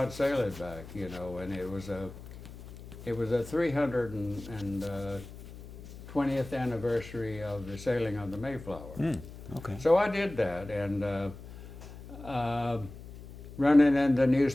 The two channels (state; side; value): noise; left; hum, 15 dB below the sound